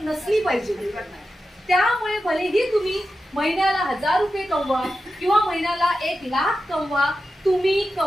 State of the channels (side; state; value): both; normal; correlation 0.91